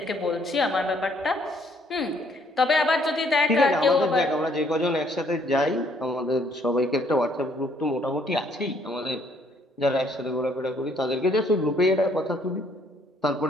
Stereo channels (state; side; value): normal; both; correlation 0.65